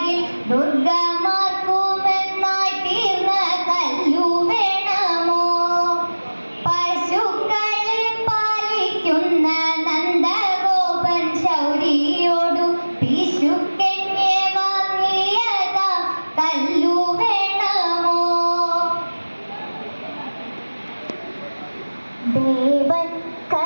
ദുർഗമാർക്കുമെന്നായി തീർന്ന കല്ലു വേണമോ? പശുക്കളെ പാലിക്കുന്ന നന്ദഗോപൻ ശൗരിയോടു പിശുക്കെന്നെ വാങ്ങിയതാ കല്ലു വേണമോ? ദേവൻ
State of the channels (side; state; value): both; inverted; correlation -1.00